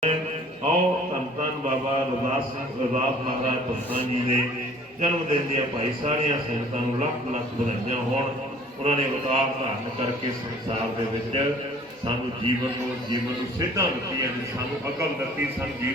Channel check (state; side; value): normal; both; correlation 0.52